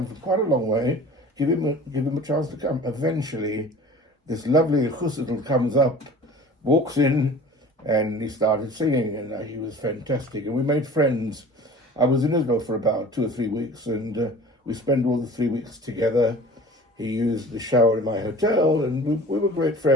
from quite a long way. Give him a chance to come. Eventually, this lovely chussidl comes up, walks in, and he started singing, and he was fantastic. And we made friends. I was in Israel for about 2 or 3 weeks, and we spent all the 3 weeks together. He used the shower in my hotel, and we were great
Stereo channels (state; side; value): normal; both; correlation 0.43